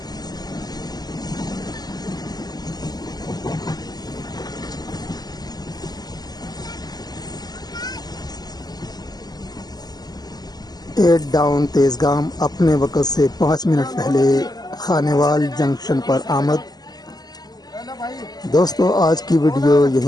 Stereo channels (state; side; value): late; right; 0.19 ms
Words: एट डाउन तेजगाम अपने वक्त से 5 मिनट पहले खानेवाल जंक्शन पर आमद। दोस्तों आज की वीडियो